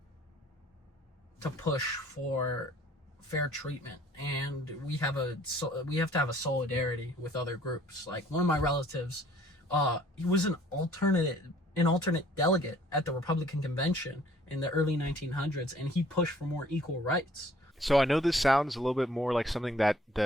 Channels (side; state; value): both; normal; correlation 0.57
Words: to push for fair treatment, and we have to have a solidarity with other groups. Like one of my relatives, he was an alternate delegate at the Republican convention in the early 1900s, and he pushed for more equal rights. So I know this sounds a little bit more like something that